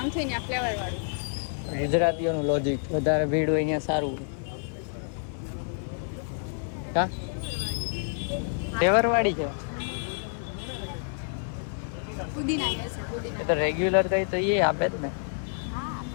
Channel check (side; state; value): right; silent; digital silence